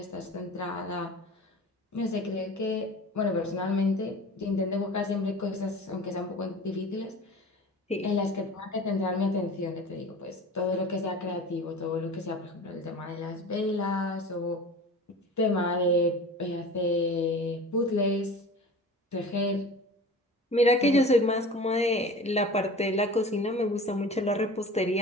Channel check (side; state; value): both; normal; correlation 0.38